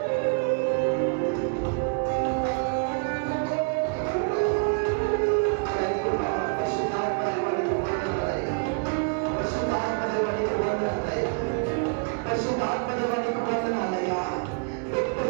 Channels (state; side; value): quieter; left; 38.3 dB